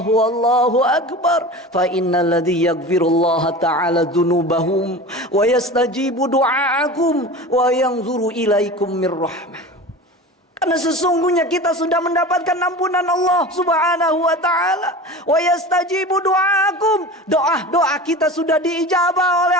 akbar. Fa innal ladzi yaghfirullaha ta'ala dzunubahum wa yastajibu du'aakum wa yanzuru ilaikum mir rahmah. Karena sesungguhnya kita sudah mendapatkan ampunan Allah subhanahu wa ta'ala. Wa yastajibu du'aakum, doa-doa kita sudah diijabah oleh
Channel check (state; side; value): normal; both; correlation 0.33